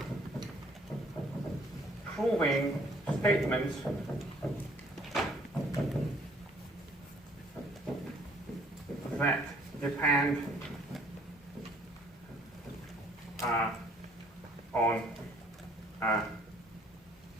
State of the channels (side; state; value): both; normal; correlation 0.60